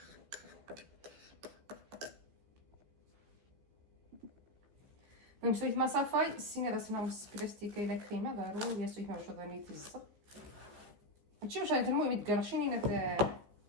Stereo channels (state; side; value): late; left; 15 ms